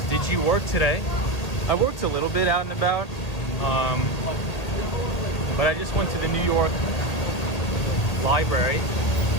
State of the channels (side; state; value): right; late; 1.8 ms